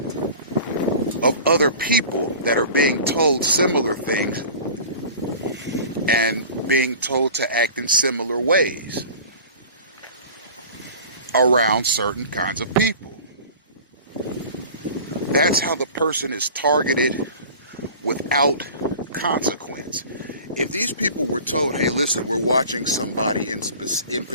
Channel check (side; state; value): both; inverted; correlation -0.40